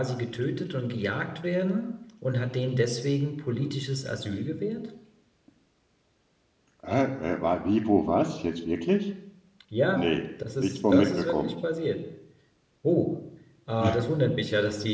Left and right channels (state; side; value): identical; both; correlation 1.00